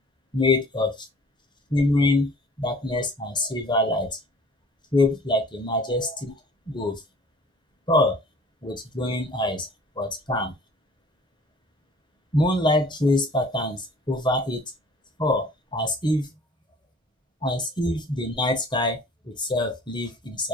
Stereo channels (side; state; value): both; normal; correlation 0.50